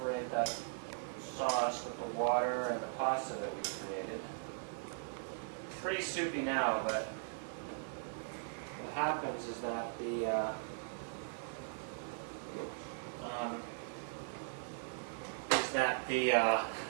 that sauce with the water and the pasta that we created. Pretty soupy now, but what happens is that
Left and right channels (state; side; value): silent; left; digital silence